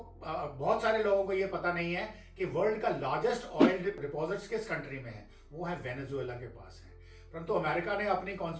बहुत सारे लोगों को ये पता नहीं है कि वर्ल्ड का लार्जेस्ट ऑयल डिपॉजिट्स किस कंट्री में है, वो है वेनेजुएला के पास है। परंतु अमेरिका ने अपनी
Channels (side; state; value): both; identical; correlation 1.00